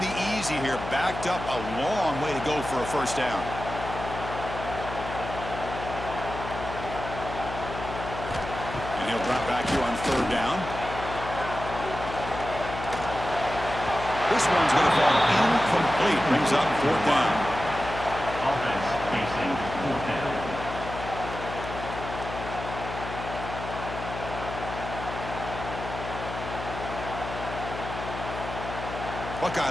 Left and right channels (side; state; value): left; noise; hum, 8 dB below the sound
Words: be easy here. Backed up a long way to go for a first down. And he'll drop back here on third down. This one's going to fall incomplete. Brings up fourth down. Offense facing fourth down.